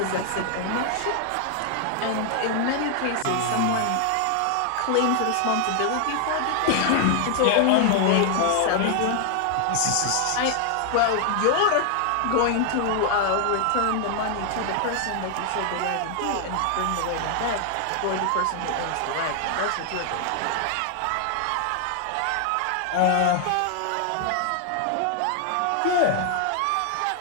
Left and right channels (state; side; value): different; both; correlation 0.00